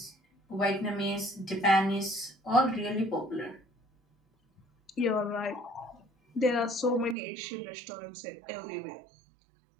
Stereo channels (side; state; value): left; drops out; at 7.2 s